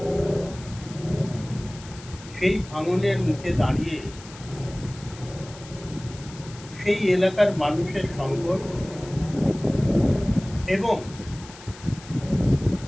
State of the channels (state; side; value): noise; left; hiss, 18 dB below the sound